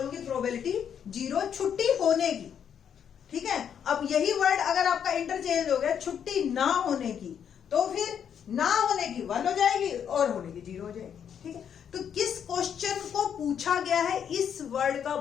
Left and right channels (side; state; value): right; quieter; 8.3 dB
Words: प्रोबेबिलिटी 0 छुट्टी होने की। ठीक है, अब यही वर्ड अगर आपका इंटरचेंज हो गया छुट्टी ना होने की, तो फिर ना होने की 1 हो जाएगी और होने की 0 हो जाएगी। ठीक है, तो किस क्वेश्चन को पूछा गया है इस वर्ड का